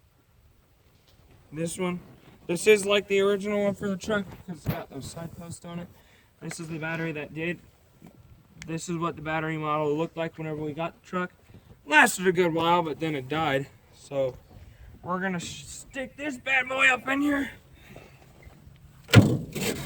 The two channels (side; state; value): both; identical; correlation 1.00